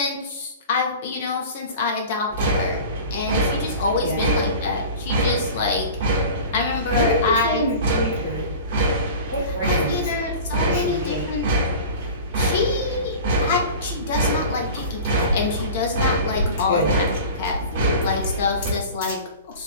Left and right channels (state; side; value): inverted; both; correlation -0.37